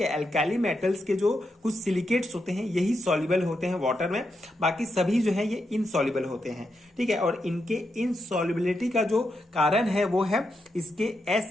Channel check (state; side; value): normal; both; correlation 0.84